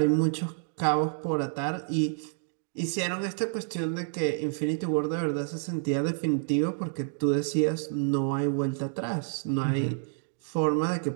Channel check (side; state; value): left; silent; digital silence